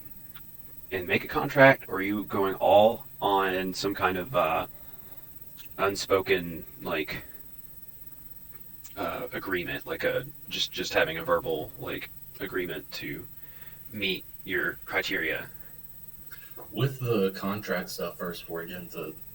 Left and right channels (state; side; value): quieter; left; 3.3 dB